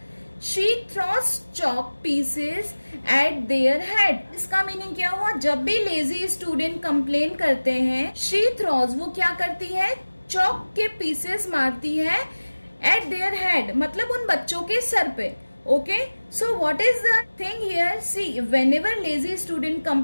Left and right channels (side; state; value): both; inverted; correlation -1.00